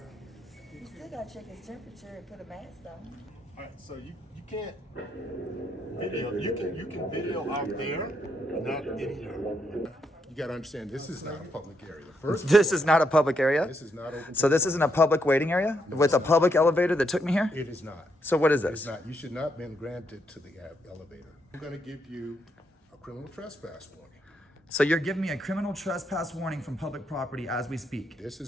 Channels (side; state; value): both; normal; correlation 0.77